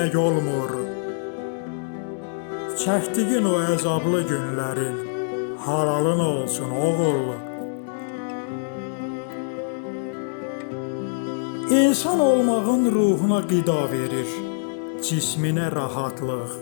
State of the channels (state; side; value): silent; right; digital silence